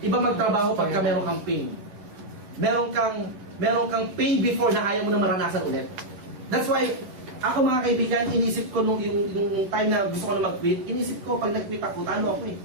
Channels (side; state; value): left; late; 10 ms